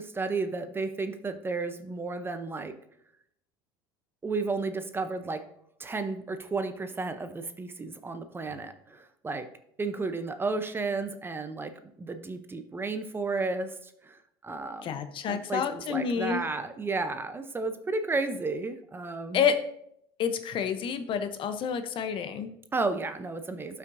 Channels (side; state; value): both; normal; correlation 0.48